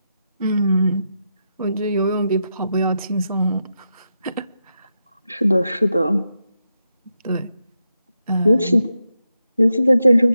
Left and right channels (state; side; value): inverted; both; correlation -0.86